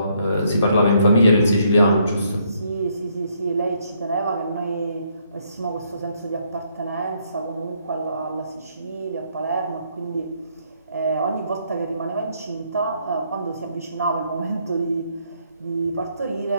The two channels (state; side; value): inverted; both; correlation -0.71